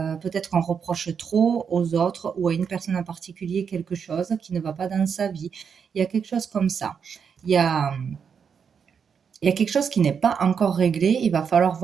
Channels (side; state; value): left; quieter; 6.7 dB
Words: qu'on reproche trop aux autres ou à une personne en particulier quelque chose qui ne va pas dans sa vie. Il y a quelque chose comme ça. Il y a, il y a quelque chose qui n'est pas encore réglé. Il va falloir